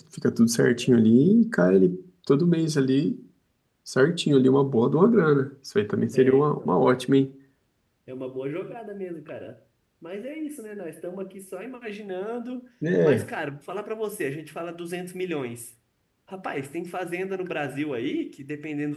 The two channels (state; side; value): identical; both; correlation 1.00